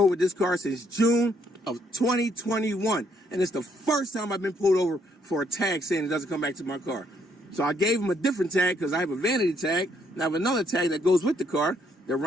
with this car since June of 2021. And it's the first time I've been pulled over for a tag saying it doesn't come back to my car. So I gave them a different tag because I have a vanity tag. And I have another tag that goes with the car. They're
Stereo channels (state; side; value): normal; both; correlation 0.70